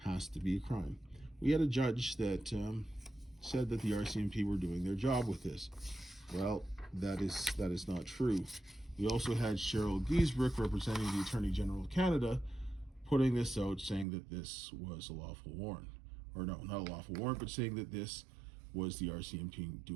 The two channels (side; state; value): left; drops out; at 14.1 s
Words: to be a crime. We had a judge that said that the RCMP were doing their job with this. Well, that is not true. We also had Cheryl Giesbrecht, representing the Attorney General of Canada, putting this out, saying that this was a lawful warrant. Or no, not a lawful warrant, but saying that this was the RCMP